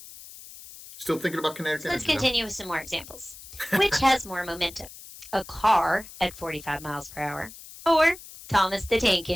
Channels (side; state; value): left; noise; hiss, 16 dB below the sound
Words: Still thinking about kinetic So let's energy though. continue with some more examples. Which has more momentum? A car at 45 miles per hour, or Thomas the Tank